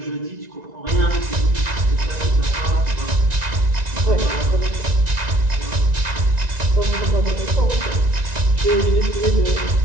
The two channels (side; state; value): left; late; 1.9 ms